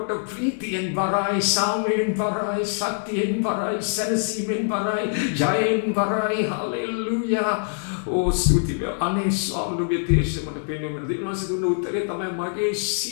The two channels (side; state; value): right; silent; digital silence